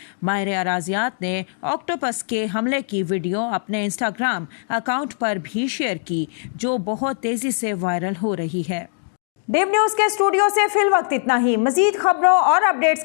ماہر اراضیات نے آکٹوپس کے حملے کی ویڈیو اپنے انسٹاگرام اکاؤنٹ پر بھی شیئر کی، جو بہت تیزی سے وائرل ہو رہی ہے۔ ڈیو نیوز کے اسٹوڈیو سے فی الوقت اتنا ہی۔ مزید خبروں اور اپڈیٹس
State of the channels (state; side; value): silent; right; digital silence